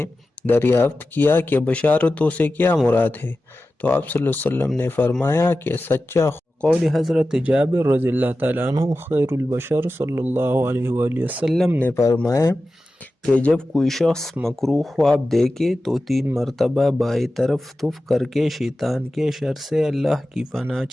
دریافت کیا کہ بشارتوں سے کیا مراد ہے، تو آپ صلی اللہ علیہ وسلم نے فرمایا کہ سچا قول حضرت جابر رضی اللہ تعالیٰ عنہ خیر البشر صلی اللہ علیہ وآلہ وسلم نے فرمایا کہ جب کوئی شخص مکروہ خواب دیکھے تو 3 مرتبہ بائیں طرف تف کر کے شیطان کے شر سے اللہ کی پناہ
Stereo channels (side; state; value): both; normal; correlation 0.94